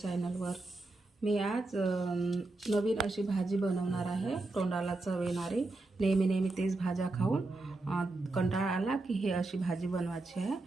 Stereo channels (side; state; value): left; quieter; 3.1 dB